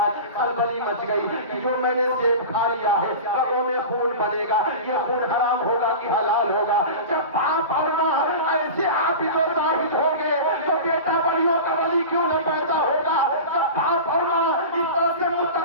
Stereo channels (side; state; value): both; inverted; correlation -0.31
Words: خلبلی مچ گئی کہ جو میں نے سیب کھا لیا ہے رگوں میں خون بنے گا, یہ خون حرام ہوگا کہ حلال ہوگا؟ جب باپ اور ماں ایسے عابد و زاہد ہوں گے تو بیٹا ولیوں کا ولی کیوں نہ پیدا ہوگا؟ جب باپ اور ماں اس طرح سے